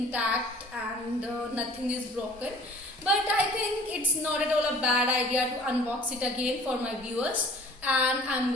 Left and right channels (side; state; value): both; normal; correlation 0.49